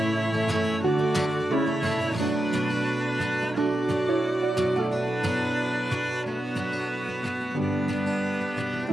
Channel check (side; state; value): both; normal; correlation 0.89